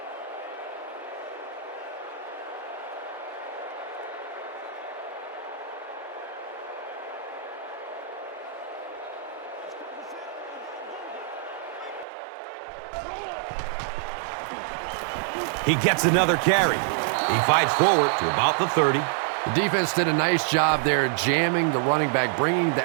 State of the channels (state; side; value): drops out; left; at 12.1 s